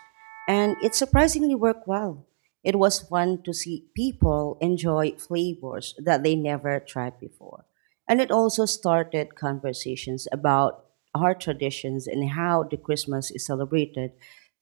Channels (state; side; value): silent; left; digital silence